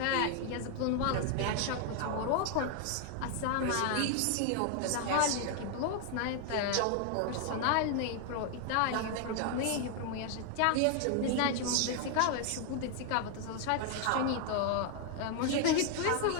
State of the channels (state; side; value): different; both; correlation 0.00